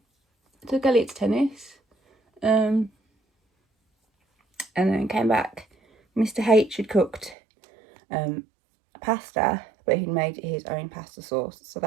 I took Elliot to tennis. And then came back. Mr. H had cooked pasta, but he'd made his own pasta sauce, so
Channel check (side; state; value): left; drops out; at 7.4 s